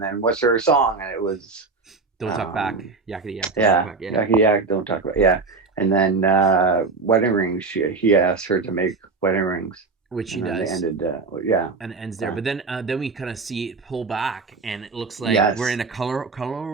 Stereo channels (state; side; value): quieter; left; 4.2 dB